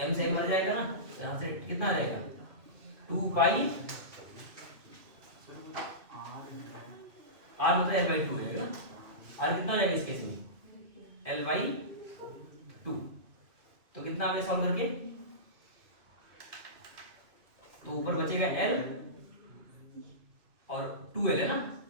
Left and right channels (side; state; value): left; late; 2.6 ms